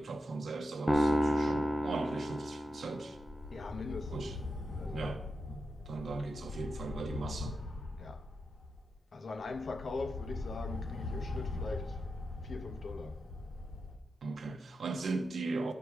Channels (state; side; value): normal; both; correlation 0.89